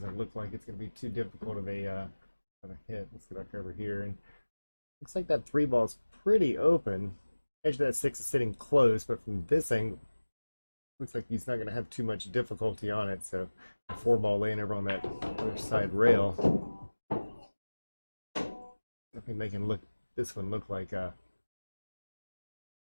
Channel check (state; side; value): inverted; both; correlation -1.00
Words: look like it's going to be too difficult of a hit. Let's get back over here, and looks like that 3 ball's pretty open. Edge of that 6 is sitting close, but from this angle, looks like he's not going to have too much difficulty on it. So the 4 ball laying over on that other side rail, definitely making this one look like